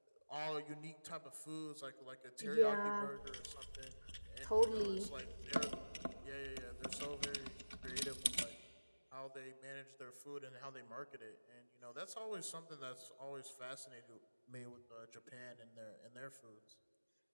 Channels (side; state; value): both; inverted; correlation -1.00